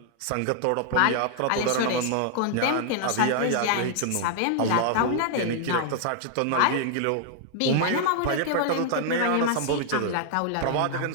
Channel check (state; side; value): different; both; correlation 0.00